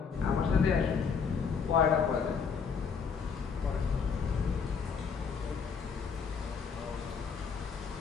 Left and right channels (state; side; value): quieter; right; 5.9 dB